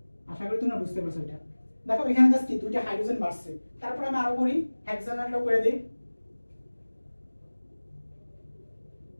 আশা করি তোমরা বুঝতে পারছো এটা। দেখো এখানে জাস্ট কি 2টা হাইড্রোজেন বাড়ছে, তারপর আমি আরো করি হেক্সানেলটা করে দেই।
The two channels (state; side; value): inverted; both; correlation -1.00